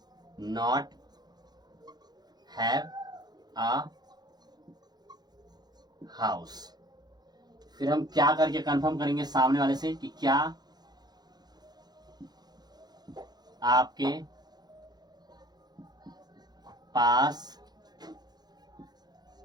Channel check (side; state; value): left; late; 0.20 ms